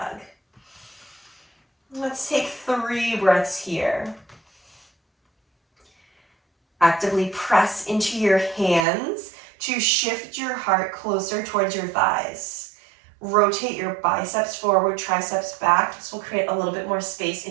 Let's take 3 breaths here. Actively press into your hands to shift your heart closer towards your thighs. Rotate your biceps forward, triceps back. This will create a little bit more space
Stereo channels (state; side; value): drops out; left; at 8.8 s